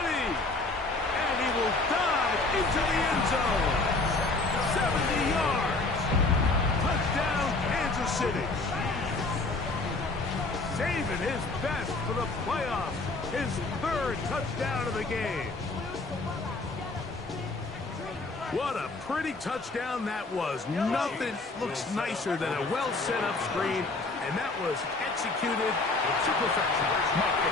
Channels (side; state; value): right; quieter; 3.3 dB